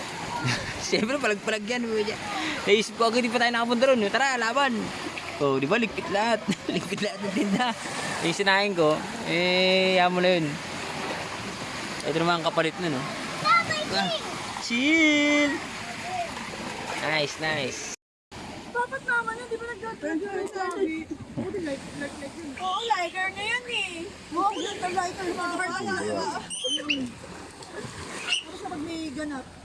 Siyempre, palag-palag yan. Naisip ko, hindi pa tayo nakapunta ron. Tara, laban. Oh, di ba, ligpit lahat. Ligpit lahat ng tinda. Yung sinahin ko, yan mo na yun. Ito naman ang kapalit na, no? Chill! Nice. Dapat naman yun, di ba nag-like? Oo, liker na yun eh. Oo, liker na yun. Tapos na pag may ganap.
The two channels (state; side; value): identical; both; correlation 1.00